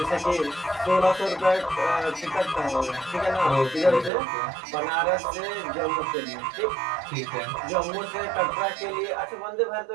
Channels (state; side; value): drops out; left; at 4.1 s